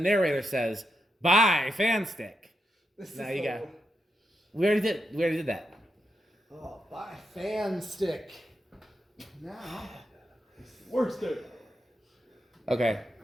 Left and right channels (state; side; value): normal; both; correlation 0.84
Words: says, "Buy fan stick." This Now is you the- got. We already did that. Oh, buy fan stick. Now. Worst day. Okay.